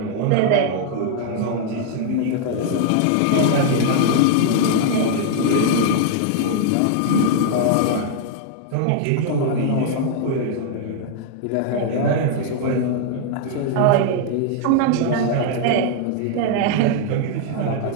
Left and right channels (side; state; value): both; different; correlation 0.00